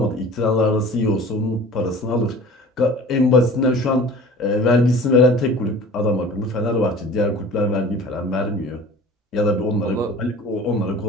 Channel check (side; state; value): both; normal; correlation 0.43